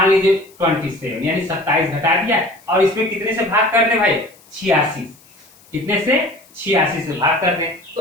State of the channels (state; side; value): noise; left; hiss, 28 dB below the sound